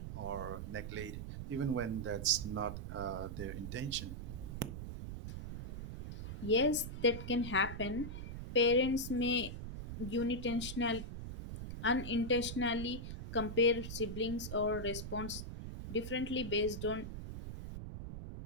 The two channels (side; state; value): right; noise; rumble, 7 dB below the sound